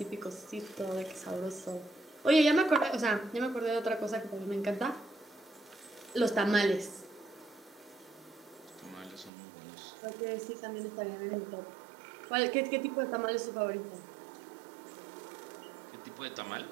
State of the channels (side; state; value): left; drops out; at 9.3 s